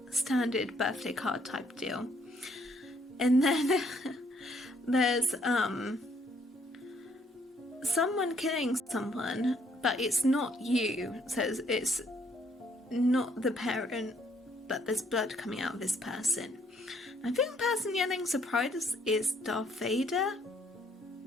a standard birthday card type deal. And then there's someone killing someone, but it's not you. It says it's not the parent, but there's blood coming out of this person. I think the person yelling surprise is Darth Vader.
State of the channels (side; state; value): both; normal; correlation 0.67